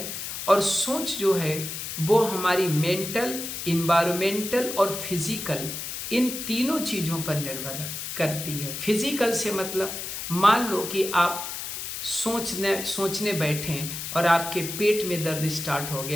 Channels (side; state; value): left; noise; hiss, 6 dB below the sound